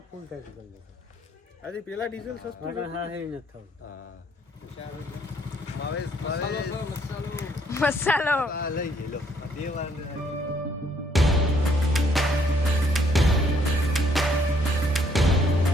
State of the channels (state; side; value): normal; both; correlation 0.67